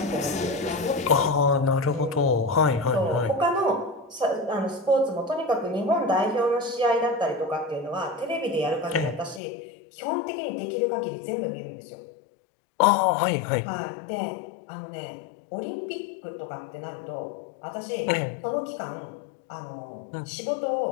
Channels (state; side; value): drops out; right; at 9.4 s